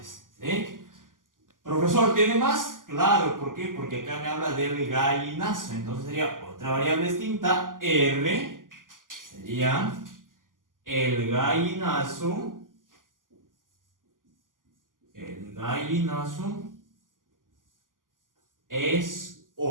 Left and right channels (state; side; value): late; left; 0.89 ms